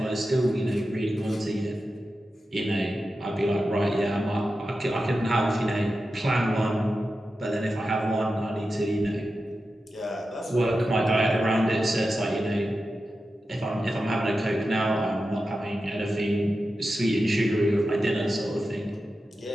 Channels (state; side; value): normal; both; correlation 0.91